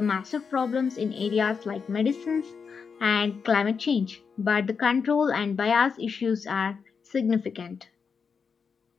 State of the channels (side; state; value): right; quieter; 5.8 dB